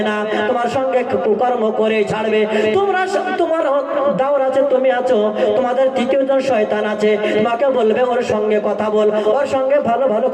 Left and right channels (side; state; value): both; identical; correlation 1.00